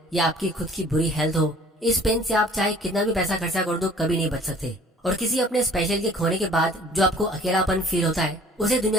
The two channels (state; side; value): normal; both; correlation 0.52